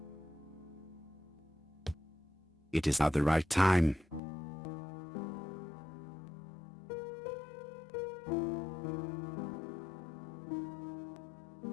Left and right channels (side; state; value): right; drops out; at 4.2 s